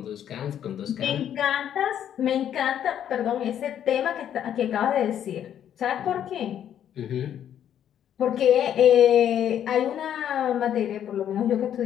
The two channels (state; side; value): quieter; right; 10.0 dB